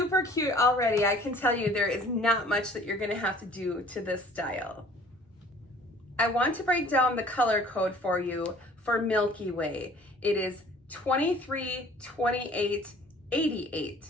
cute already. I can tell you there is not much that you're gonna have to do to this style. I want to break down the color code for you for Milky Way. It is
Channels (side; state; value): both; normal; correlation 0.52